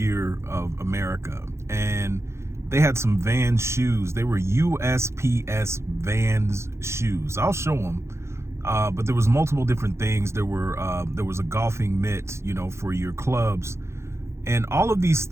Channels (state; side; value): late; left; 0.13 ms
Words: of America. And they had some Vans shoes. They were USPS Vans shoes. I'll show them. But there was multiple different things. There was a golfing mitt, for your clubs. And all of these